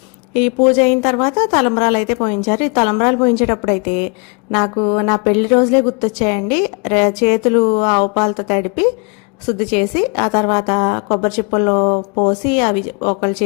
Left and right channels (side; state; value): right; quieter; 34.5 dB